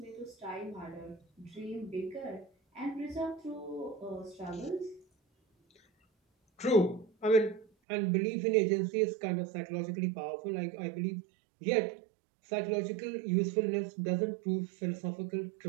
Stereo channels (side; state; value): left; drops out; at 7.7 s